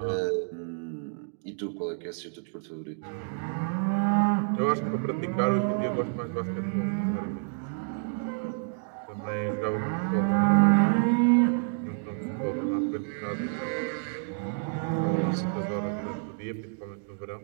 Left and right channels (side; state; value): left; silent; digital silence